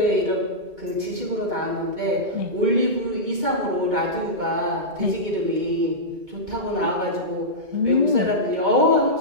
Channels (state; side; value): late; left; 2.2 ms